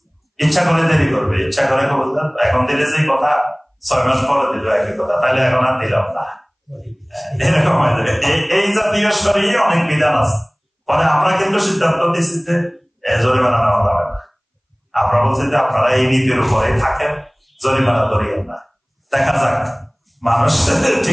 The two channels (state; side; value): identical; both; correlation 1.00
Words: ইচ্ছা করে দেরি করবে, ইচ্ছা করে এখন দিলে যে কথা 6 মাস পরে দিল একই কথা, তাহলে এখন আর দিলাম না, এরকম হয়ে যাবে। এই জাতীয় শরীরে অনেক বিধান আছে, মানে আমরা কিন্তু সিদ্ধান্ত দিচ্ছি যে জরিমানা নেওয়া যাবে না। আমরা বলছি যে আপনারা এই নীতির উপরে থাকেন, জরিমানা করিয়েন না। দেখা যাক মানুষ